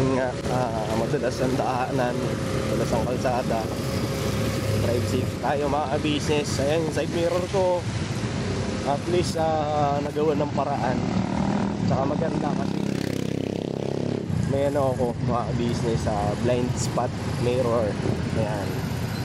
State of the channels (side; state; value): both; identical; correlation 1.00